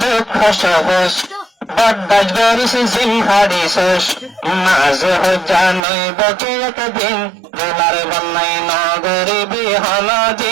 দুঃখ সহজ বদাস গরিস জিমহারিস মাঝে হজ্জা নইব কি একদিন দোলার বন্যাই নগরী বিহন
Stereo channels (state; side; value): drops out; left; at 5.8 s